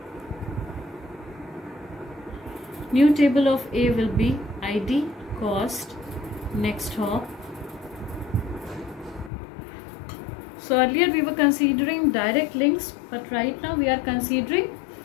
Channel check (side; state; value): right; drops out; at 9.3 s